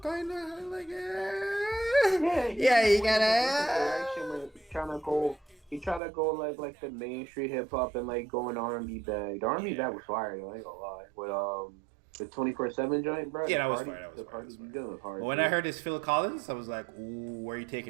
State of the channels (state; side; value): drops out; left; at 6.0 s